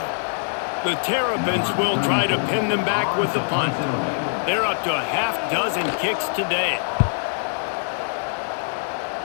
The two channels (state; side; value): silent; right; digital silence